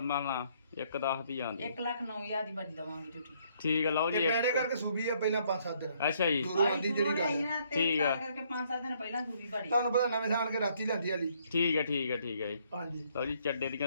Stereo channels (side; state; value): both; inverted; correlation -0.67